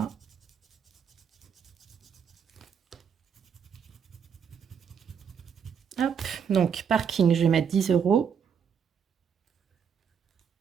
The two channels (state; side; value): quieter; left; 7.2 dB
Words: Hop, donc parking, je vais mettre 10 €.